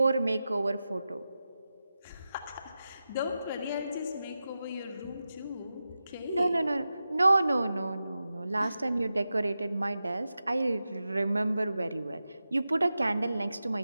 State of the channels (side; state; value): both; inverted; correlation -0.92